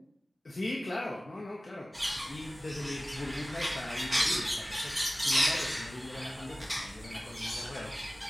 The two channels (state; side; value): normal; both; correlation 0.97